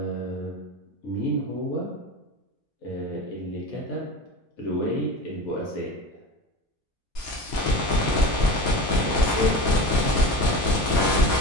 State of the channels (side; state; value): both; normal; correlation 0.31